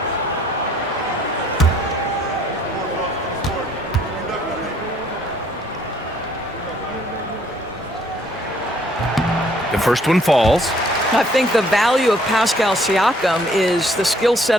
The first one falls. I think the value of Pascal Siakam is the skill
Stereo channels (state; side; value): normal; both; correlation 0.63